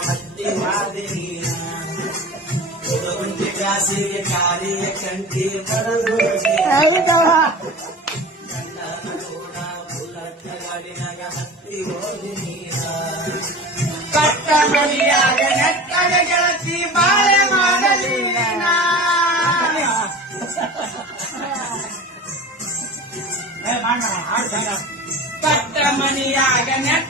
ಮತ್ತಿ ಮಾದಿ ಹುಡುಗುಂಟೆ ಕ್ಲಾಸಿಗೆ ಕಾರಿಯ ಕಂಟಿ ಬರದು ಕಣ್ಣಾನ ಕೂಡ ಬುಲ್ಲಟ್ಟ ಗಾಡಿನಾಗ ಹತ್ತಿ ಹೋದಿ ಕಟ್ಟ ಮನೆಯಾಗ ನೆಟ್ಟಗ ಗೆಳತಿ ಬಾಳೆ ಮಾಡಲಿ ಕಟ್ಟ ಮನೆಯಾಗ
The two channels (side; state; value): both; normal; correlation 0.35